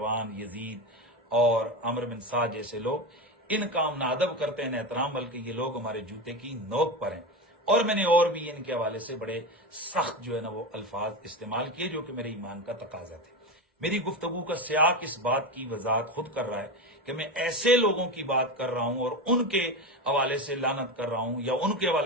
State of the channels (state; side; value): normal; both; correlation 0.20